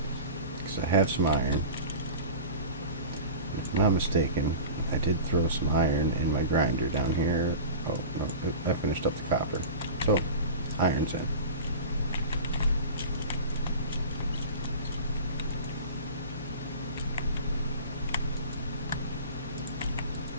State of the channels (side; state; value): both; inverted; correlation -0.34